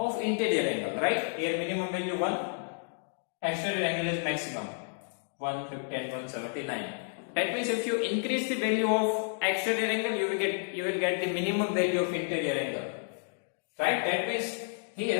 interior angle, right? Here minimum value 1, exterior angle is maximum 150 and 179. That means if you increase the value of exterior angle, you will get the minimum value of interior angle, right? That means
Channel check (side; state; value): right; silent; 57 dB below the other